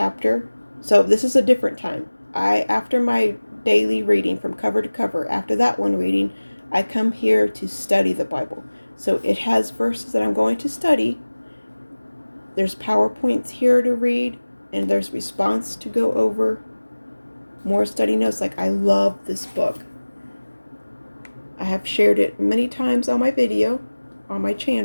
So this is a different time. After my daily reading from cover to cover, after that one reading, I come here to study the Bible. So it has verses that I'm going to study. There's PowerPoints here to read, and there's response to go over. More study notes. Like, I love this book. I have shared it many times on my video, on my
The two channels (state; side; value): inverted; both; correlation -1.00